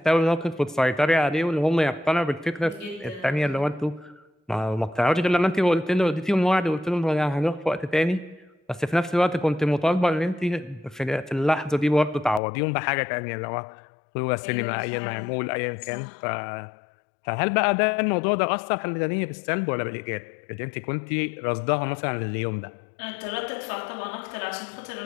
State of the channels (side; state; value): right; drops out; at 12.4 s